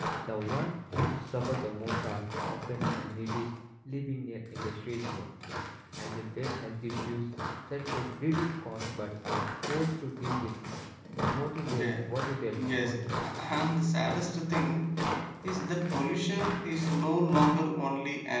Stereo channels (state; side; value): identical; both; correlation 1.00